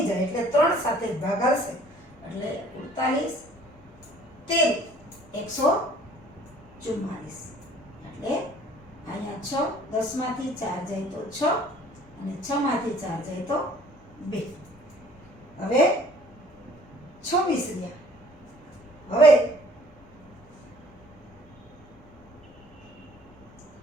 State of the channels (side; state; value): both; normal; correlation 0.55